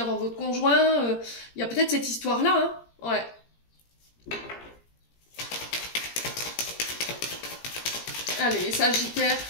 votre conjoint. Il y a peut-être cette histoire-là, hein. Ouais. Allez, Sagittaire.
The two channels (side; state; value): right; late; 17 ms